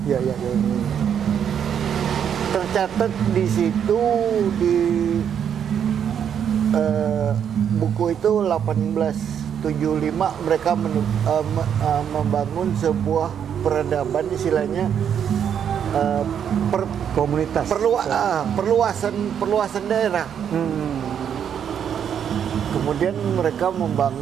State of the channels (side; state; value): left; quieter; 8.4 dB